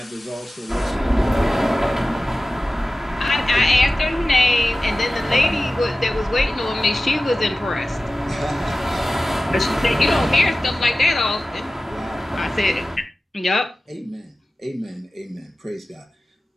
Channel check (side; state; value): both; normal; correlation 0.96